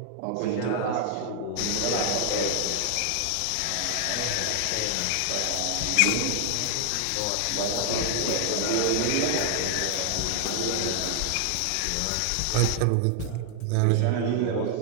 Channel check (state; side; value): different; both; correlation 0.00